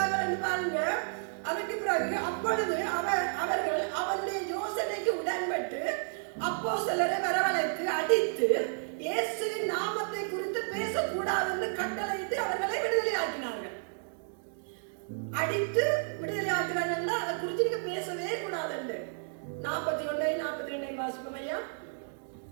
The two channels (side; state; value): left; silent; digital silence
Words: என்று பாருங்க. அதற்கு பிறகு அப்பொழுது அவர்கள் அவருடைய யோசனைக்கு உடன்பட்டு அப்போஸ்தலரை வரவழைத்து அடித்து இயேசுவின் நாமத்தை குறித்து பேசக்கூடாது என்று கட்டளையிட்டு அவர்களை விடுதலையாக்கினார்கள். அடித்து விடுதலையாக்கிறார்கள். அதை குறித்து நீங்க பேசவே கூடாது என்று 41 42 வாசிப்போம் ஐயா.